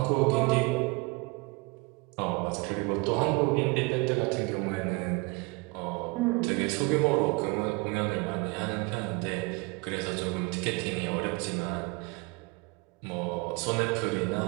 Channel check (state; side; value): quieter; left; 27.0 dB